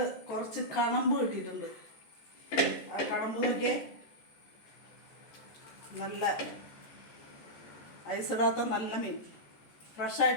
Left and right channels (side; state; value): right; late; 14 ms